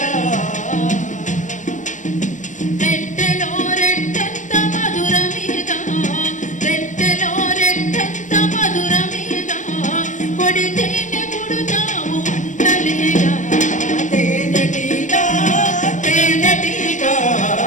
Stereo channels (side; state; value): right; late; 0.36 ms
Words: రెట్టెలో రెట్టంత మధురమీగా రెట్టెలో రెట్టంత మధురమీగా కొడితే